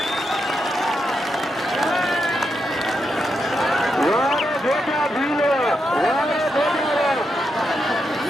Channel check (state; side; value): normal; both; correlation 0.84